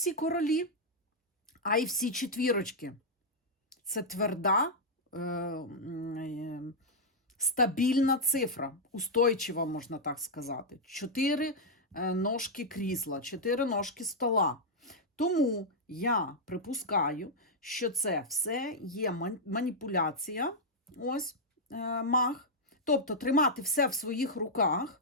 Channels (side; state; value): both; normal; correlation -0.04